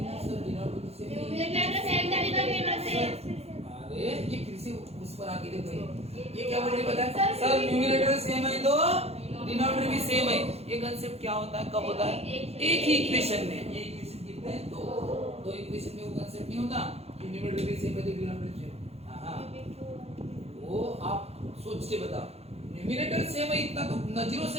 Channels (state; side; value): late; left; 0.30 ms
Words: ना सर, डिनोमिनेटर सेम नहीं। अरे ये फिर से उस पर आके देखो, ये क्या बोल रही पता है? सर न्यूमरेटर सेम है तो डिनोमिनेटर भी सेम है। ये कंसेप्ट क्या होता है? कब होता है? एक ही इक्वेशन में। ये इक्वेशन कितने हैं? दो इक्वेशन में वो कंसेप्ट नहीं होता कि न्यूमरेटर भी सेम है तो डिनोमिनेटर सेम। हां वो आप सोच के बताओ। न्यूमरेटर सेम है इतना तो नजरों